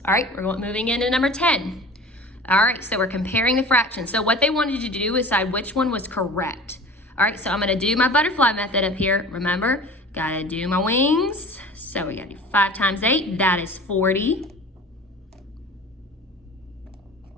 All right, we're moving into number 10. All right, so we're comparing the fractions. So what they wanted you to do is decide which one was correct. All right, so I'm gonna do my butterfly method up here. Remember, gotta do my wings. So we gotta do 5 times 8, that is 40.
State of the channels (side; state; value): both; normal; correlation 0.40